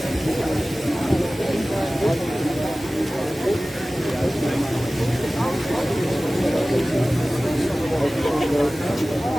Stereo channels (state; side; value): normal; both; correlation 0.97